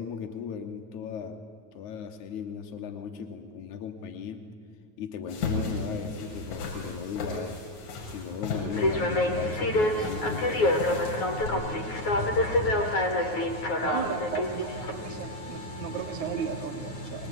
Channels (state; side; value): late; right; 9.4 ms